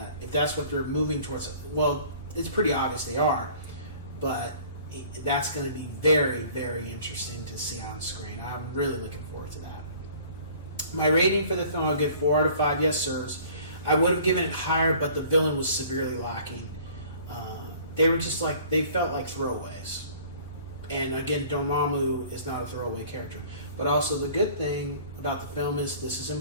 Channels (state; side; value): inverted; both; correlation -0.50